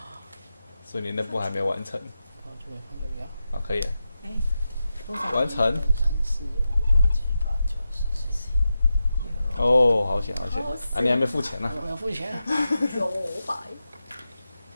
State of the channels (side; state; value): both; inverted; correlation -0.90